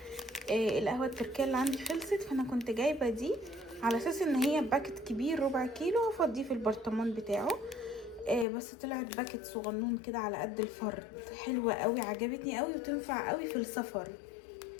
القهوه التركيه اللي عندي خلصت، فانا كنت جايبه دي على اساس ان هي باكت كبير ربع كيلو افضيه في البرطمان بتاعه. بس طلعت باكت صغنون كده على قد الفرد، حلوه قوي عجبتني قوي وتنفع قوي في السفر،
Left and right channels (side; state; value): right; drops out; at 8.5 s